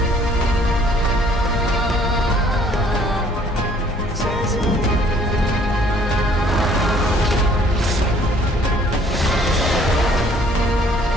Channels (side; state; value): both; normal; correlation 0.59